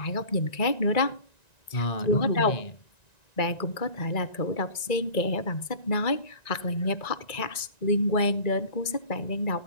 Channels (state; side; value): late; right; 1.9 ms